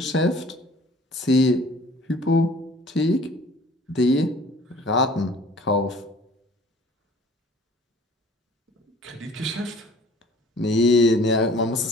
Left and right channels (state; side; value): normal; both; correlation 0.51